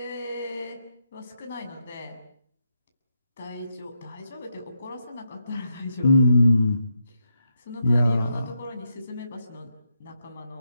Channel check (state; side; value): inverted; both; correlation -0.82